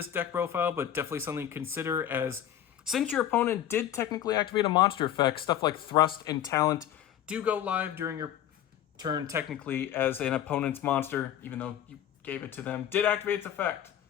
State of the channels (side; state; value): right; quieter; 10.9 dB